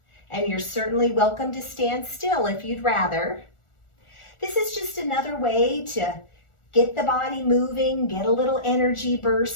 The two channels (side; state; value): right; late; 1.4 ms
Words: and you're certainly welcome to stand still if you'd rather. This is just another way to get the body moving, get a little energy